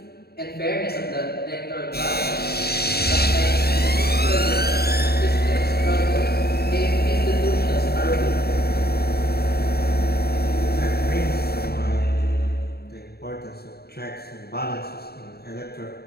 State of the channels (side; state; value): right; late; 0.46 ms